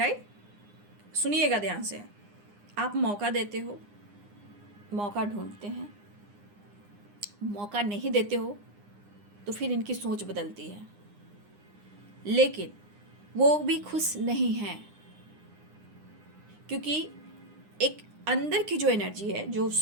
सुनिएगा ध्यान से, आप मौका देते हो, मौका ढूंढते हैं, मौका नहीं देते हो तो फिर इनकी सोच बदलती है, लेकिन वो भी खुश नहीं हैं, क्योंकि एक अंदर की जो एनर्जी है, जो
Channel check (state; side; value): late; left; 9.8 ms